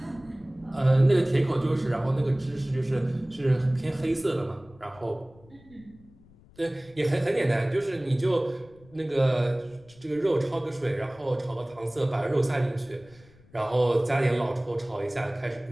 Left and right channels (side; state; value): left; noise; rumble, 26 dB below the sound